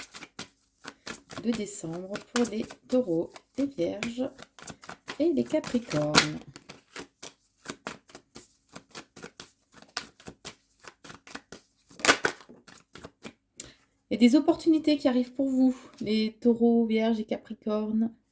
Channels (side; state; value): both; identical; correlation 1.00